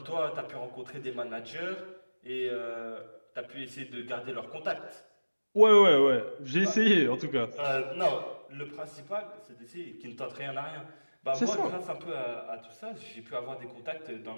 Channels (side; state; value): both; inverted; correlation -1.00